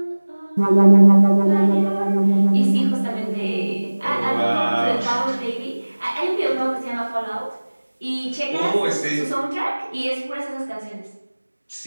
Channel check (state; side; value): inverted; both; correlation -1.00